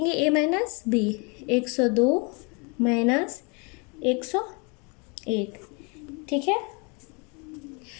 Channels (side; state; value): right; quieter; 31.9 dB